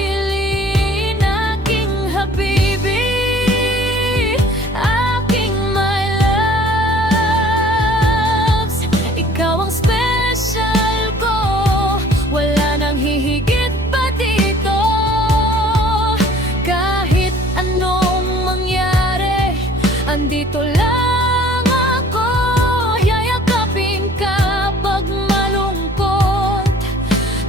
Aking habibi, aking my loves, ikaw ang special ko, wala nang hihigit pa dito. Kahit anong mangyari, andito lang ako. Yayakapin ka pag malungkot,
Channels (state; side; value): normal; both; correlation 0.52